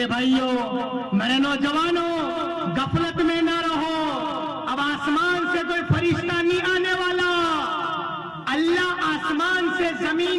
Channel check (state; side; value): identical; both; correlation 1.00